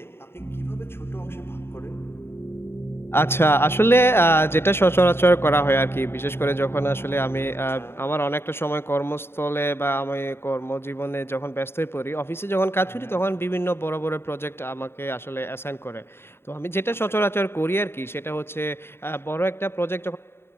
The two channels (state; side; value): late; right; 0.11 ms